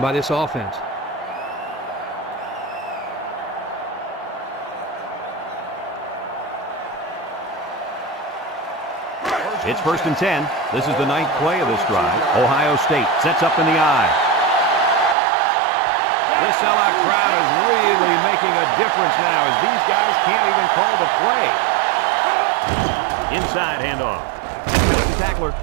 by this offense. It's 1st and 10. This is the 9th play of this drive. Ohio State sets up in the I. This sellout crowd is really making a difference now as these guys can't even call the play. Inside handoff. The tackler,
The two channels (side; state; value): left; drops out; at 15.2 s